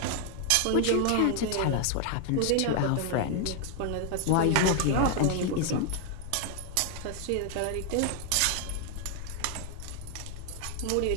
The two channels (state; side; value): different; both; correlation 0.00